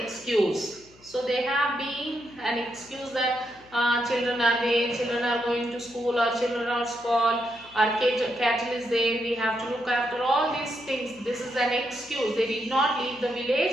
So they have been an excuse that children are there, children are going to school, or children are small, our cattle is there, we have to look after all these things. This is an excuse. They did not leave the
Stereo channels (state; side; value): noise; left; hum, 27 dB below the sound